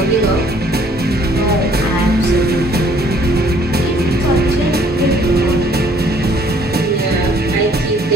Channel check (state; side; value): normal; both; correlation 0.61